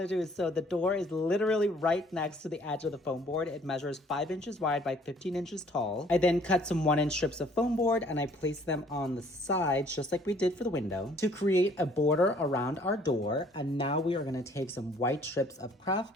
to do. So the door is literally right next to the edge of the foam board. It measures 5 inches wide by 15 inches tall. I then cut some 1-inch strips of foam board and I placed them on the sides, just like we did for the window, to create a border around our door. And now we are going to take some white strips of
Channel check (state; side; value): normal; both; correlation 0.58